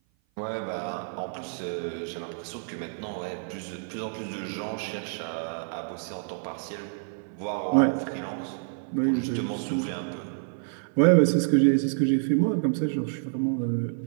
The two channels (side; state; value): left; silent; 55 dB below the other